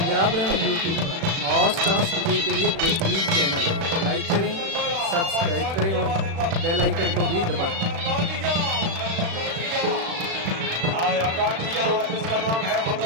पंजाब रन यूट्यूब पर हॉट डांस वीडियो के लिए बेहतरीन चैनल। लाइक करें, सब्सक्राइब करें और बेल आइकन को भी दबाएं। आया गाठिया, इसका नाम है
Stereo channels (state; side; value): late; left; 36 ms